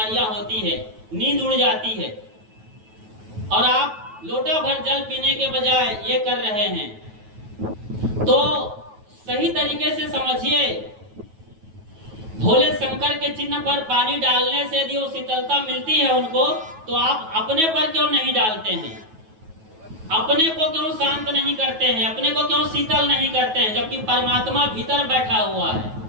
होती है, नींद उड़ जाती है। और आप लोटा भर जल पीने के बजाय ये कर रहे हैं। तो सही तरीके से समझिए, भोले शंकर के चिन्ह पर पानी डालने से यदि वो शीतलता मिलती है उनको, तो आप अपने पर क्यों नहीं डालते हैं? अपने को क्यों शांत नहीं करते हैं? अपने को क्यों शीतल नहीं करते हैं, जबकि परमात्मा भीतर बैठा हुआ है?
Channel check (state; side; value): late; left; 9.3 ms